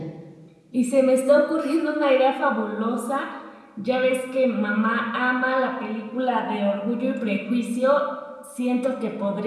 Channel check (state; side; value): identical; both; correlation 1.00